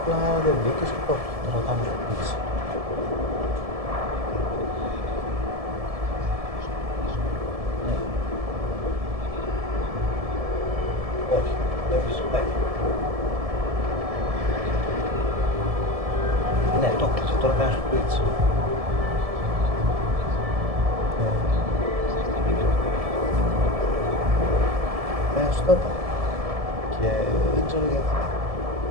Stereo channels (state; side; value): late; left; 1.7 ms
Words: Απλά δεν μπήκες και το ρωτάμε στο πίτσι. Όχι, δεν φυσικά. Ναι, το κλείσε, τώρα κάνεις στο πίτσι. Στο είπα. Και δεν ξέρω γιατί.